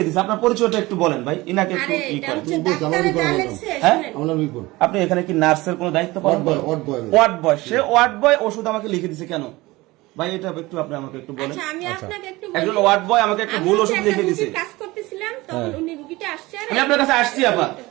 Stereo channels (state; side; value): quieter; left; 20.6 dB